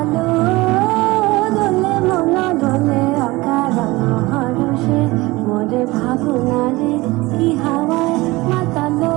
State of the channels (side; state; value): left; quieter; 21.1 dB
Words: দোলে মনা দোলে অকারণ হরষে। মোরে ভাবনার কি হাওয়ায় মাতালো